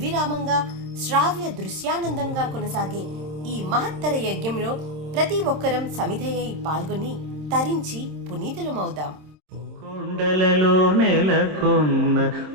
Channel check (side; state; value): left; late; 26 ms